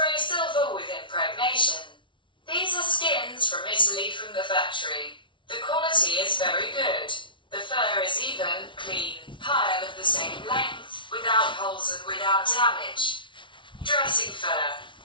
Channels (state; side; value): late; right; 0.24 ms